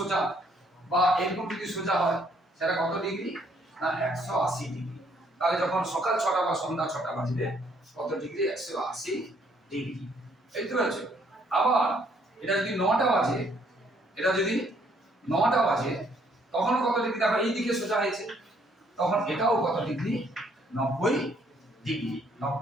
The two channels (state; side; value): normal; both; correlation 0.67